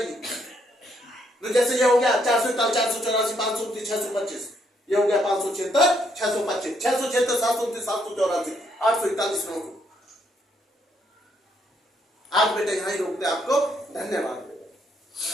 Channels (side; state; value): both; normal; correlation 0.73